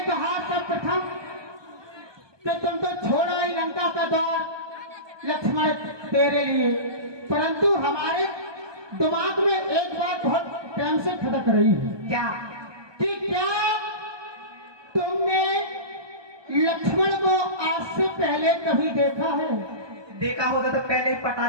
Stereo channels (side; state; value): left; late; 1.2 ms